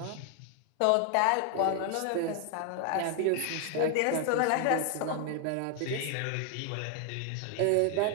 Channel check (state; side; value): different; both; correlation 0.00